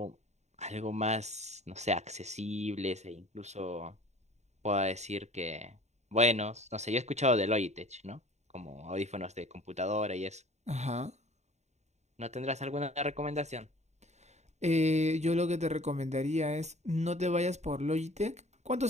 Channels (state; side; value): late; left; 0.33 ms